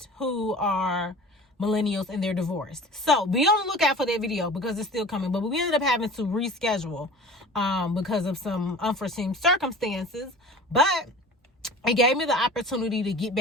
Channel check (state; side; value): normal; both; correlation 0.40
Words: who are millennials and they're divorced. So be on the lookout for that video because it's still coming. But we ended up having to reschedule because of some unforeseen circumstances. But it gave me the opportunity to get